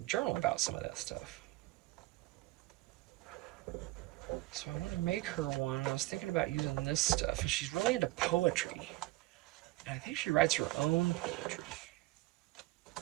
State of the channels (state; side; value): quieter; left; 19.6 dB